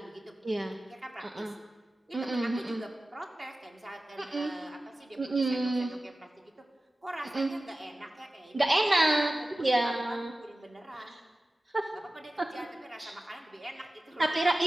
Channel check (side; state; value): both; normal; correlation 0.96